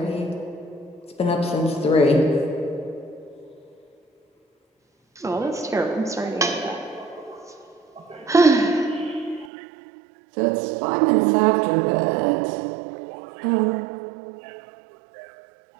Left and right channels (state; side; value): drops out; left; at 9.5 s